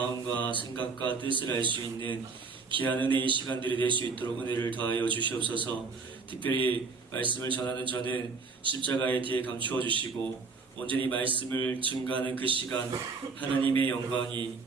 생각과 뜻을 알 수 있는 귀한 은혜의 시간들이 될 수 있도록 은혜를 더하여 주시옵소서. 특별히 말씀을 전하는 저는 십자가의 뒤에 감추어 주시고 온전히 말씀을 증거하는 그 시간 하나님의 영광이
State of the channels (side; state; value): left; quieter; 4.6 dB